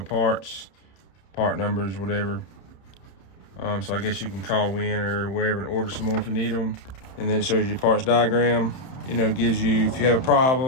part numbers, whatever. So I guess you can call Win or wherever and order some more if you need them. And then it shows you parts diagram. You know, it gives you, if you have a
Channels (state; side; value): late; right; 31 ms